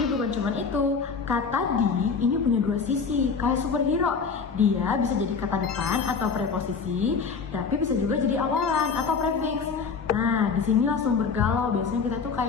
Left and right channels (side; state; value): right; quieter; 5.3 dB